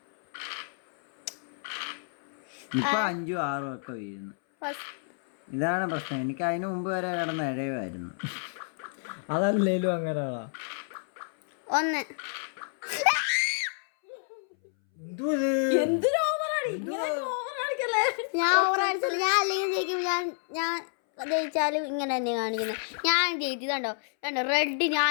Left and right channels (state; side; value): silent; right; 59 dB below the other